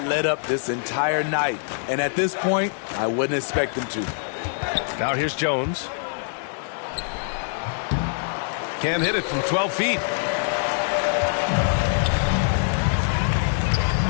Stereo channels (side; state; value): right; silent; 63 dB below the other